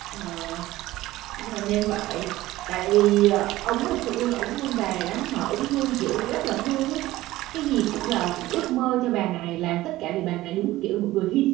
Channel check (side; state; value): left; quieter; 16.8 dB